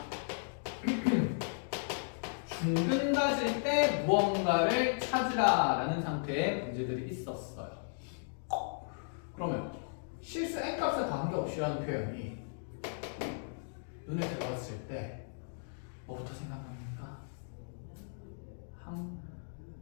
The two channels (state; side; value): silent; right; digital silence